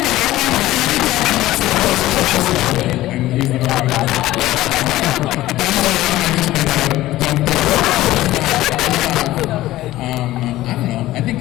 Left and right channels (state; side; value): quieter; right; 16.0 dB